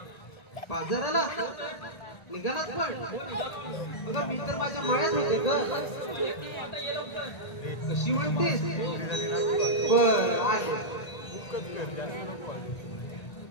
बाजाराला. निघालात पण अगं मी तर माझ्या मळ्यात होते ग. कशी म्हणतेस? बर आले.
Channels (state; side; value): late; right; 1.8 ms